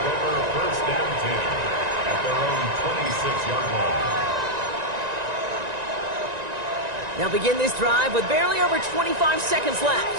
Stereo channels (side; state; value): left; late; 1.9 ms